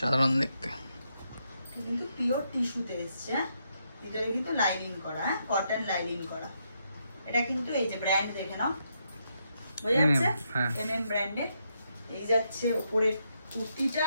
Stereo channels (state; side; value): inverted; both; correlation -0.79